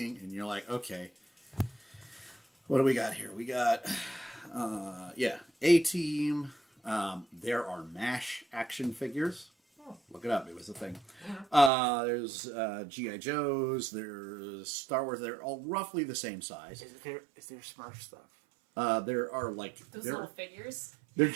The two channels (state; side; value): drops out; left; at 11.7 s